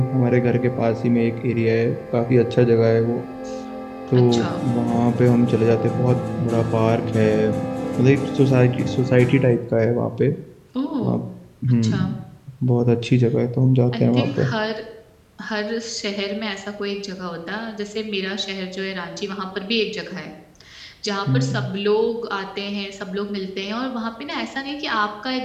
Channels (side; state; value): both; identical; correlation 1.00